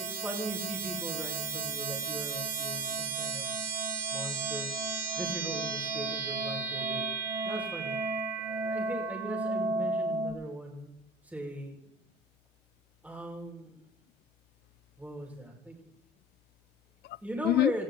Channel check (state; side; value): normal; both; correlation 0.35